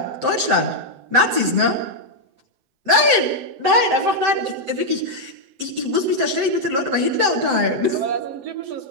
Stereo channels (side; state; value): left; late; 7.7 ms